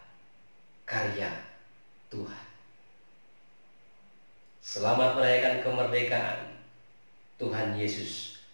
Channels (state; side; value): inverted; both; correlation -1.00